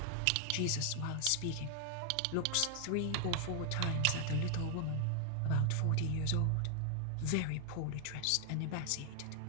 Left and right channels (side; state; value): both; different; correlation 0.00